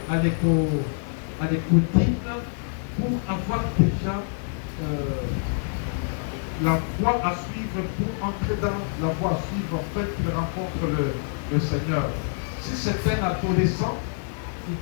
à l'écoutine pour avoir déjà la voie à suivre, pour entrer dans la voie à suivre, en fait, qu'il rencontre le Seigneur. Si c'est un adolescent, il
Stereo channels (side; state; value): right; silent; digital silence